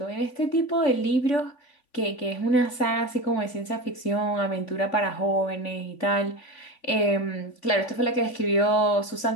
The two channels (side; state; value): right; late; 3.5 ms